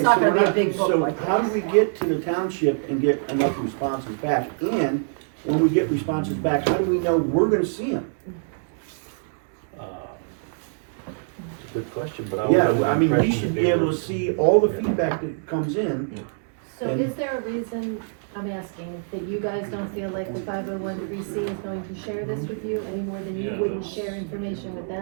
not so gonna we're be a big book So like how do this. we get to the township and get enough responses back? And when we get responses back, how do we know we're gonna see them? Good question, but I was Yeah, under I the mean, we impression should that be they able were- to see all the feedback that comes in. So And- is there a reason, I'm asking, that you guys don't feel like the 501c is going to share this with you any more than you wouldn't share information with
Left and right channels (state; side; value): silent; left; 62 dB below the other